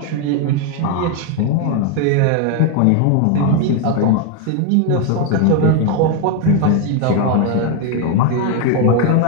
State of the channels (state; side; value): different; both; correlation 0.01